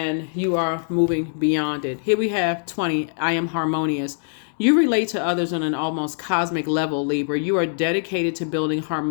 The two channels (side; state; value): right; silent; digital silence